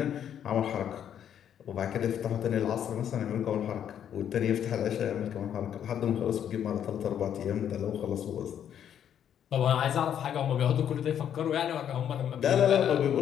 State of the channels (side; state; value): right; quieter; 9.4 dB